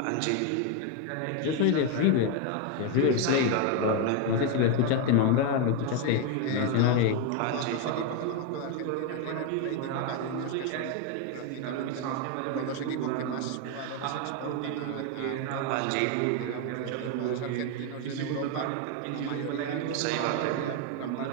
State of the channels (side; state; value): both; different; correlation 0.01